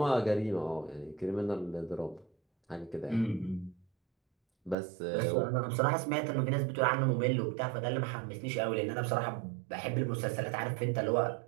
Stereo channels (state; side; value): drops out; left; at 4.8 s